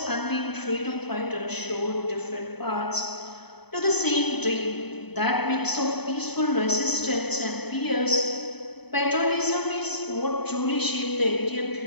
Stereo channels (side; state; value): right; late; 0.98 ms